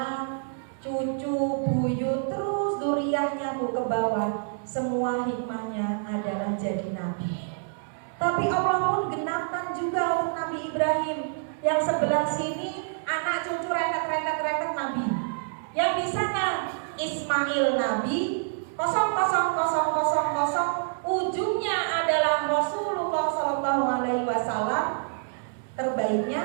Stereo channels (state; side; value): silent; left; 60 dB below the other